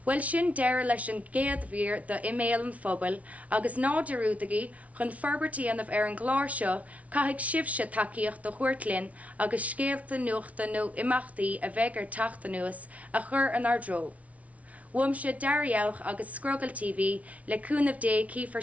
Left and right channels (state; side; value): late; left; 0.067 ms